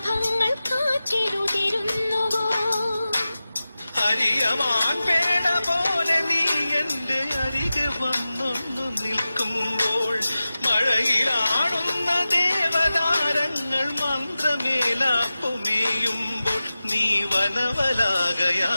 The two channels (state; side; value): inverted; both; correlation -0.95